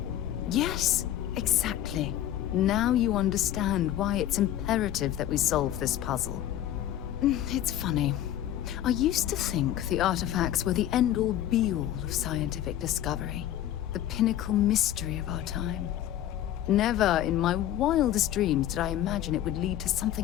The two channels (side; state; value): right; quieter; 12.1 dB